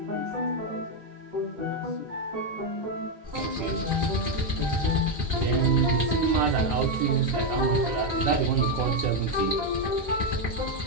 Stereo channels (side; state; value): both; normal; correlation 0.04